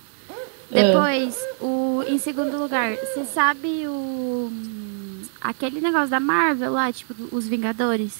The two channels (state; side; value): silent; left; digital silence